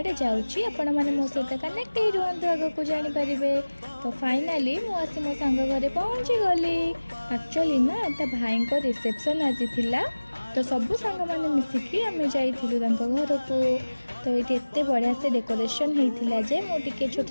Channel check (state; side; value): inverted; both; correlation -1.00